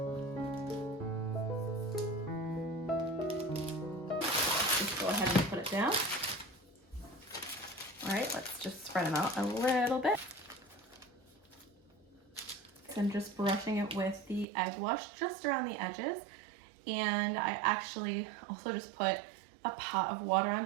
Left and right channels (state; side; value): drops out; left; at 14.5 s